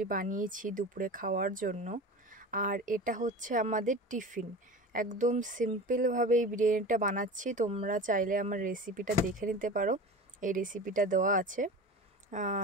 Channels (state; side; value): normal; both; correlation 0.33